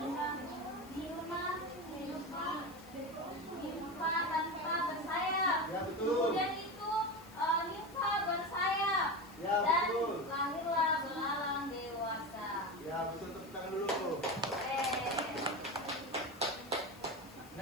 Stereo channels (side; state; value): left; noise; hiss, 22 dB below the sound